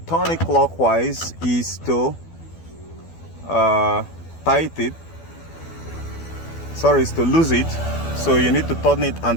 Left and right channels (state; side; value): late; right; 12 ms